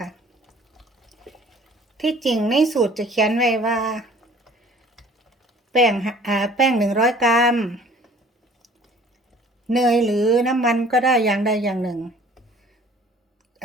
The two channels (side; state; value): both; normal; correlation 0.52